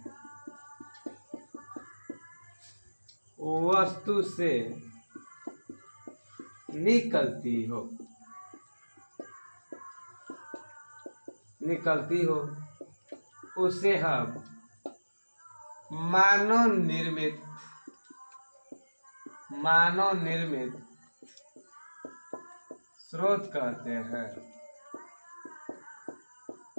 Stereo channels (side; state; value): both; inverted; correlation -1.00